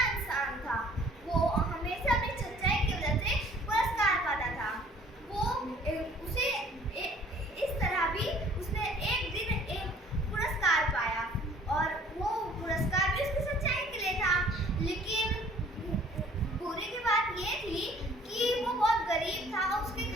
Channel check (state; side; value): normal; both; correlation 0.55